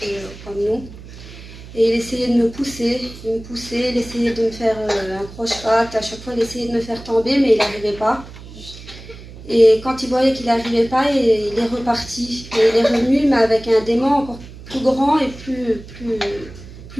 comme nous. Et il essayait de me pousser, il essayait de me faire un croche-patte, à chaque fois il essayait de me faire tomber, mais il n'arrivait pas. Et quand il voyait qu'il n'arrivait pas, il est reparti. Et il est revenu, mais avec un démon encore plus grand et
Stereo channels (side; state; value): right; noise; hum, 16 dB below the sound